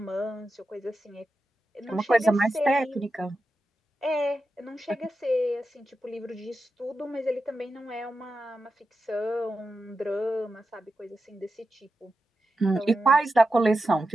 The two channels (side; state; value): both; normal; correlation 0.90